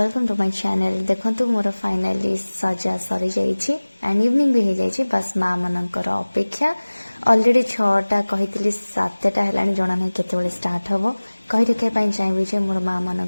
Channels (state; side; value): inverted; both; correlation -1.00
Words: to my channel. देखो मोर फाइनाली सजा सरी जाइए एंड इवनिंग भी हो जाइए। बस माँ मनकर अपेक्षा अलरेडी 6टा कही 7टा है जना ना केत स्टार्ट हम कही रखा चाहिए मोर माँ मान